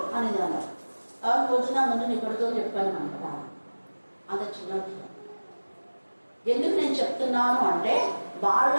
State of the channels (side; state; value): both; inverted; correlation -1.00